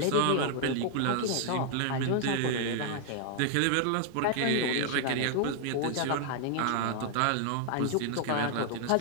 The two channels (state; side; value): different; both; correlation 0.00